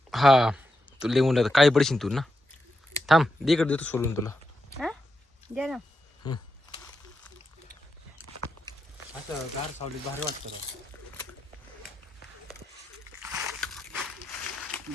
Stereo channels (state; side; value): normal; both; correlation 0.85